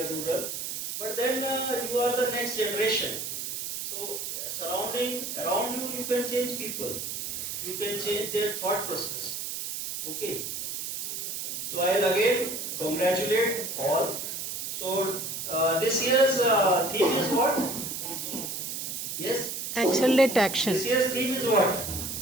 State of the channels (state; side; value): noise; right; hiss, 5 dB below the sound